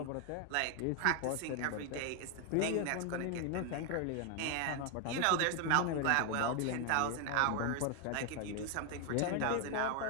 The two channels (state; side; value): different; both; correlation 0.00